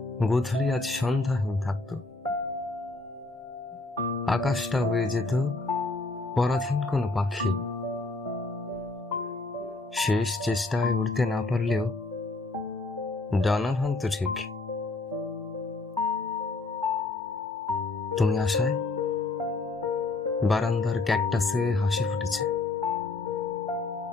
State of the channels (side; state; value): right; quieter; 3.3 dB